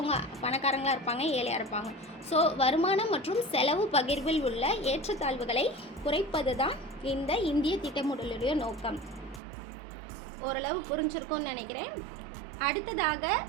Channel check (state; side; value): drops out; left; at 9.4 s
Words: பணக்காரங்களாக இருப்பாங்க, ஏழையாக இருப்பாங்க. ஸோ வருமானம் மற்றும் செலவு பகிர்வில் உள்ள ஏற்றத்தாழ்வுகளை குறைப்பது தான் இந்த இந்திய திட்டமிடலுடைய நோக்கம். ஓரளவு புரிஞ்சிருக்கும்னு நினைக்கிறேன். அடுத்ததாக